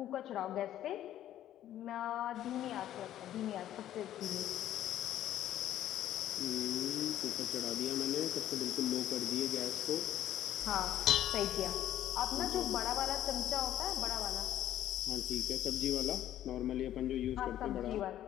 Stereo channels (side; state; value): right; quieter; 12.2 dB